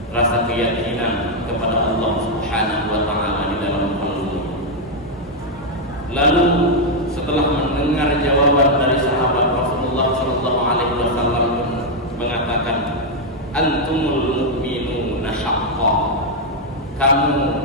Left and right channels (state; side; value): normal; both; correlation 0.00